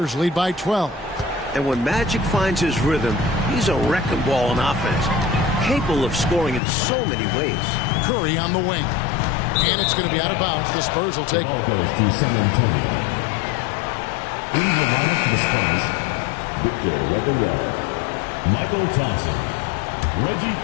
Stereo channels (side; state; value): right; drops out; at 6.6 s